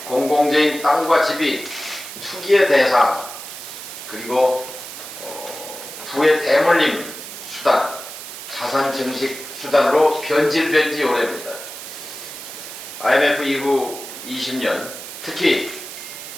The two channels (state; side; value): noise; right; hiss, 11 dB below the sound